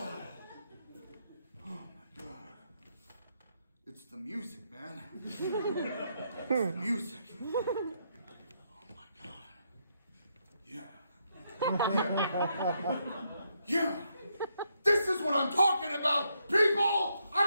my God. It's the music, man. It's the music. Oh my God. Yeah. Yeah. This is what I'm talking about, people!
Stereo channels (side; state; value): both; inverted; correlation -0.77